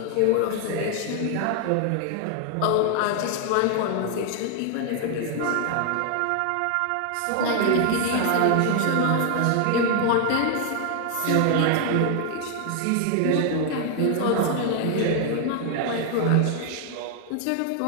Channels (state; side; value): different; both; correlation 0.00